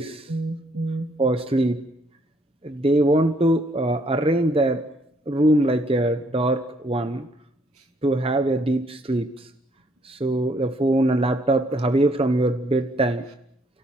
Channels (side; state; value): both; normal; correlation 0.67